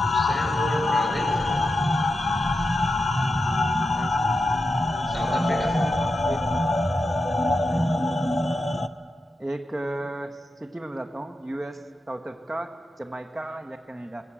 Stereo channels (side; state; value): both; normal; correlation 0.89